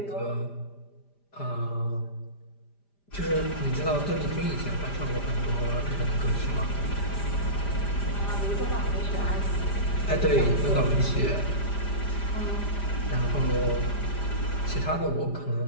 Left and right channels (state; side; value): late; right; 5.0 ms